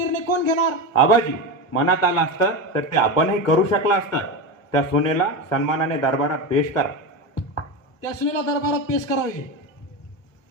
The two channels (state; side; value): late; right; 1.1 ms